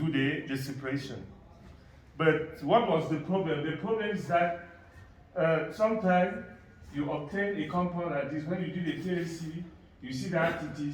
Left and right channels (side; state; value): both; identical; correlation 1.00